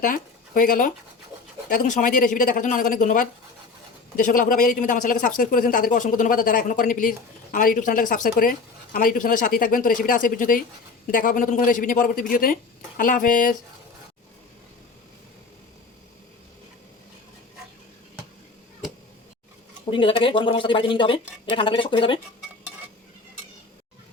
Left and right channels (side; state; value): right; quieter; 4.2 dB